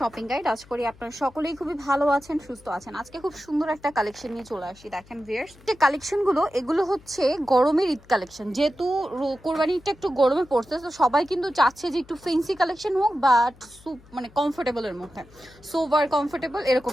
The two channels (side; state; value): left; noise; hum, 25 dB below the sound